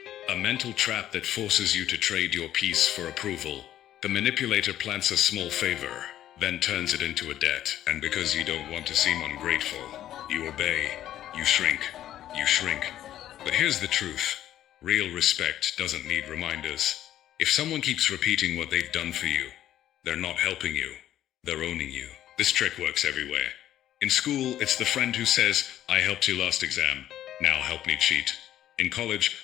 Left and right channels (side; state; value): right; quieter; 12.2 dB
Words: a mental trap that forces you to trade your peace for approval. The manipulator plants a small favor, then turns it into a debt, and because you don't want to seem ungrateful, you obey, you shrink. But here's the truth. Real respect doesn't need reminders. If someone keeps repeating what they've done for you, they're not helping you, they're owning you. This trick works everywhere. In school, it's the friend who says, "I helped you last exam, now help me cheat." In college,